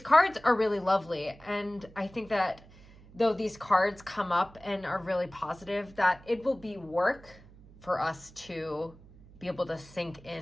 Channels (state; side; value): noise; right; hum, 22 dB below the sound